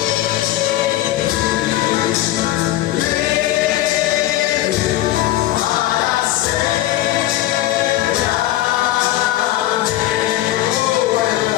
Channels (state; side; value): quieter; right; 15.1 dB